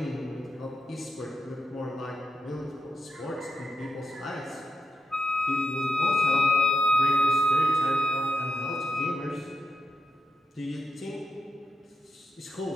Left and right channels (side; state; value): both; normal; correlation 0.88